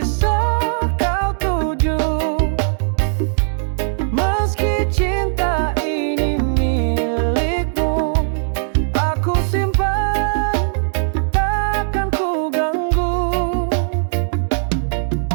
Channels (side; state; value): left; silent; digital silence